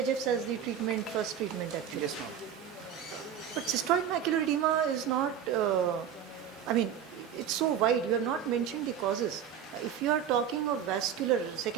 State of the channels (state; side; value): quieter; left; 8.8 dB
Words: as the first treatment actually. Yes, ma'am. But cystoid macular edema is not, I mean, it's so wide. You have not mentioned the causes. If you are talking of vascular,